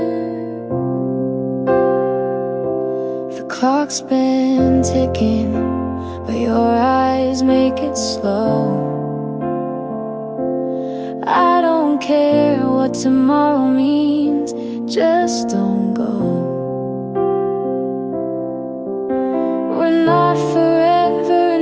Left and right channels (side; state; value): both; identical; correlation 1.00